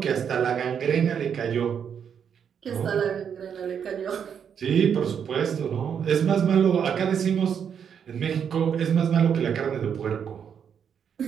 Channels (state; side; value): quieter; left; 7.7 dB